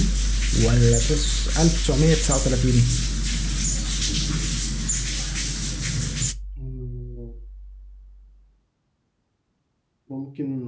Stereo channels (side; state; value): both; identical; correlation 1.00